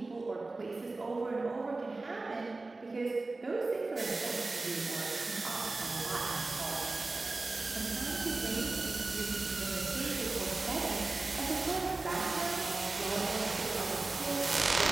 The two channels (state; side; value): quieter; left; 3.3 dB